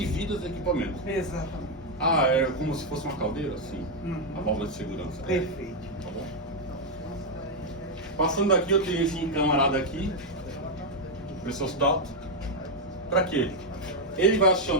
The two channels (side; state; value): both; normal; correlation 0.02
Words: vidas, equipamentos. Exatamente. É como se fosse uma caldeira? Sim. Uhum. A válvula de segurança. Perfeito. Tá bom? Passando daqui, eu tenho esse camarada aqui, pressostat. Pra quê? Ele vai